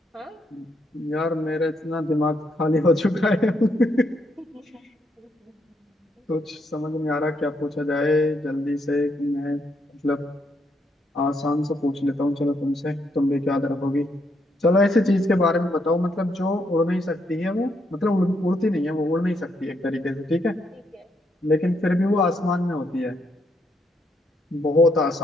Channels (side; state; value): both; normal; correlation 0.76